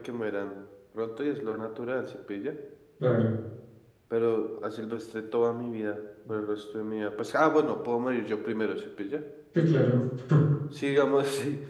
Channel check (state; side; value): identical; both; correlation 1.00